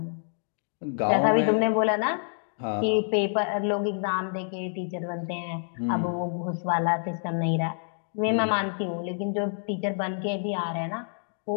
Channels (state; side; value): silent; right; digital silence